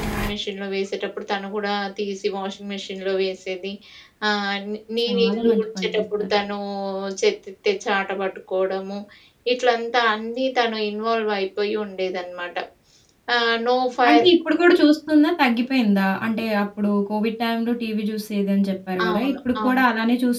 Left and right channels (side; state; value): both; identical; correlation 1.00